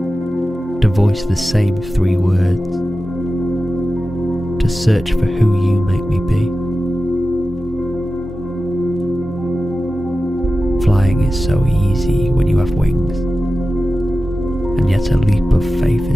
to voice the same 3 words, to search for who you make me be. Flying is so easy when you have wings, and yet a leap of faith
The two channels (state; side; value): normal; both; correlation 0.94